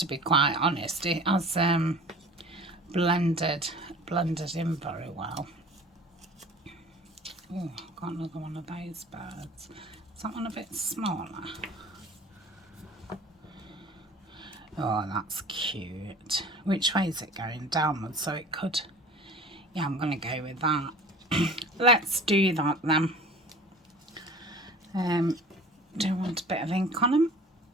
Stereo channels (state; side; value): normal; both; correlation 0.43